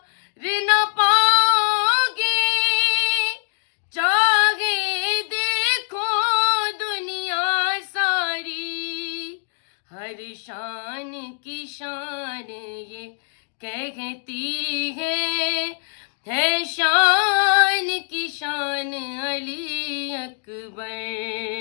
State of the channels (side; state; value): right; silent; digital silence